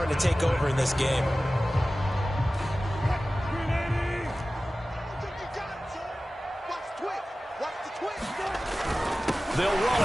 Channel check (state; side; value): normal; both; correlation 0.96